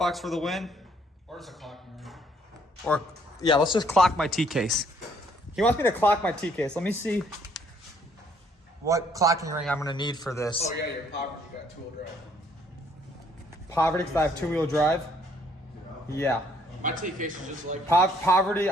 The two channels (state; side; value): normal; both; correlation 0.65